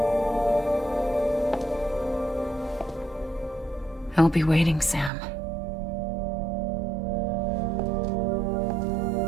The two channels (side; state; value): left; drops out; at 5.1 s